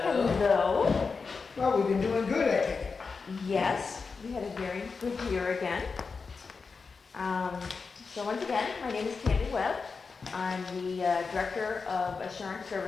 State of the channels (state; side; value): quieter; right; 4.8 dB